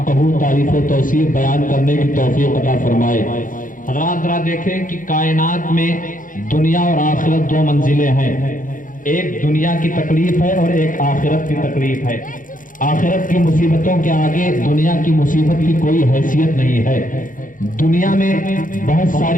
تعریف و توصیف بیان کرنے کی توفیق عطا فرمائے۔ حضرات ذرا دیکھیں کہ کائنات میں دنیا اور آخرت دو منزلیں ہیں، ایک دنیا کی تکلیف ہے اور ایک آخرت کی تکلیف ہے۔ آخرت کی مصیبتوں کے آگے دنیا کی مصیبت کی کوئی حیثیت نہیں ہے۔ دنیا میں بہت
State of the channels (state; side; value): late; right; 0.39 ms